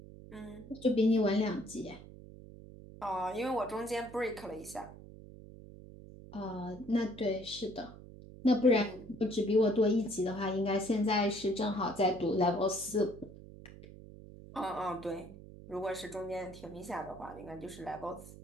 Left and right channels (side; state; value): right; noise; hum, 16 dB below the sound